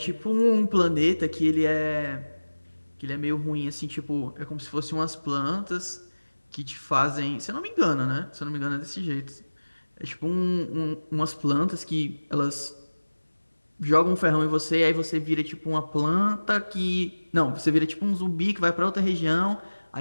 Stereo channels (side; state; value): both; inverted; correlation -1.00